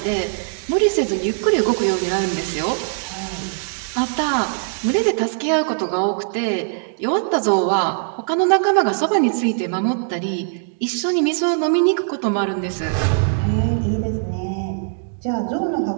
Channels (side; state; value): left; silent; digital silence